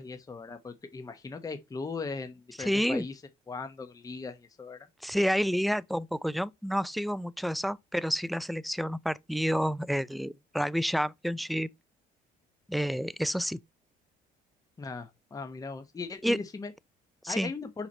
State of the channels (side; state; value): both; normal; correlation 0.95